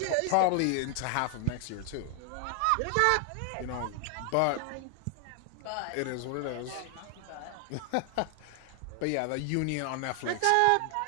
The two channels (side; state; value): both; different; correlation 0.00